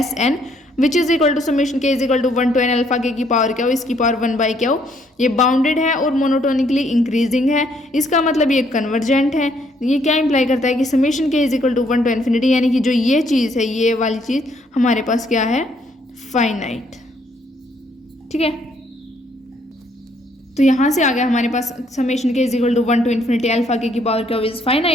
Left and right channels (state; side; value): normal; both; correlation 0.68